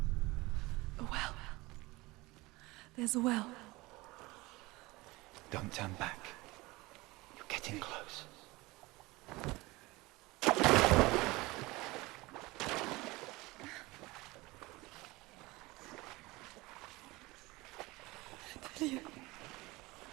There's a well. Don't turn back. You're getting close. Delia.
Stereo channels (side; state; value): left; quieter; 21.8 dB